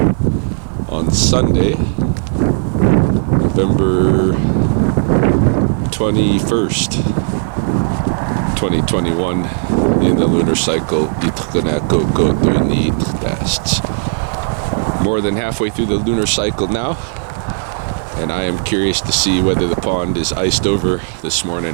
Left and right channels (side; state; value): left; silent; digital silence